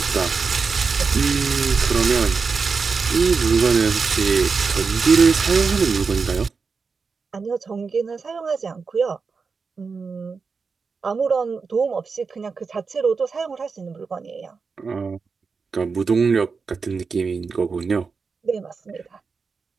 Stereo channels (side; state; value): left; quieter; 5.0 dB